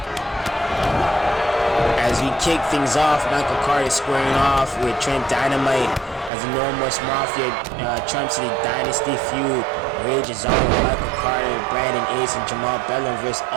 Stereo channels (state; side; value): drops out; left; at 6.3 s